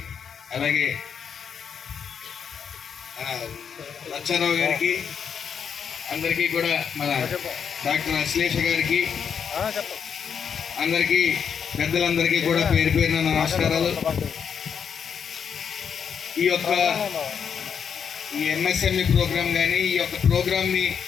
అలాగే లచ్చారావు గారికి, అందరికీ కూడా మన డాక్టర్ అశ్లేష గారికి, అందరికీ పెద్దలందరికీ కూడా పేరు పేరున నమస్కారాలు. ఈ ఎంఎస్ఎంఈ ప్రోగ్రాం కానీ, ఈ యొక్క ప్రోగ్రాంని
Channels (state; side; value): quieter; right; 7.2 dB